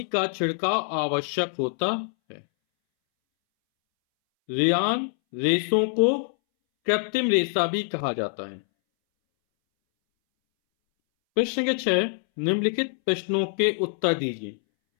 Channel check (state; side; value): silent; right; 62 dB below the other